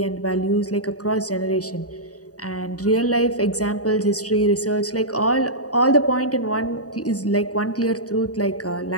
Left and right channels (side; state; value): right; late; 0.67 ms